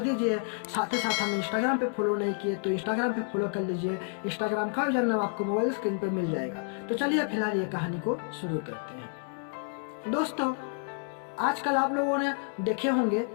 दीजिए। साथ ही साथ हमें इंस्टाग्राम पे फॉलो नहीं किए तो इंस्टाग्राम पे फॉलो कर लीजिए। इंस्टाग्राम का यूजर नाम आपको मोबाइल स्क्रीन पे मिल जाएगा। तो चलिए फिलहाल ये कहानी को शुरू करते हैं। दोस्तों, आजकल आप लोगों ने देखे होंगे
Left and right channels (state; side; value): silent; right; 58 dB below the other